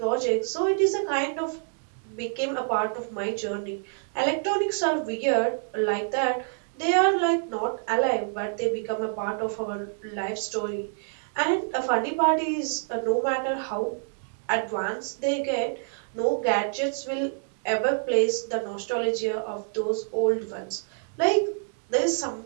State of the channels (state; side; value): silent; left; digital silence